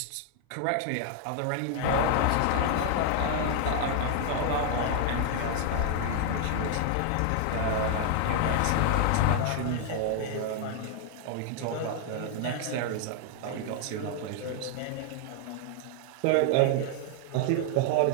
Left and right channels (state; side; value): different; both; correlation 0.00